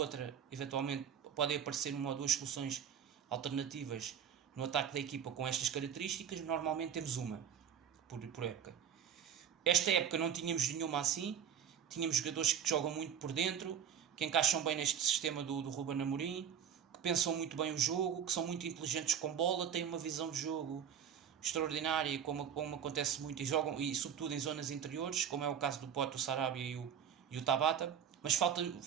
eventualmente podem aparecer uma ou duas soluções alternativas no ataque da equipa com estas características. Normalmente temos uma por época. Esta época não tínhamos nenhuma assim. Tínhamos jogadores que jogam muito por dentro, que encaixam bem neste sistema do Ruben Amorim, que pensam muito bem o jogo, que são muito inteligentes com bola, têm uma visão de jogo extraordinária, como acontece muito, e jogam, e sobretudo em zonas interiores, como é o caso do Pote, o Sarabia e o Tabata. Mas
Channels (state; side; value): quieter; left; 8.3 dB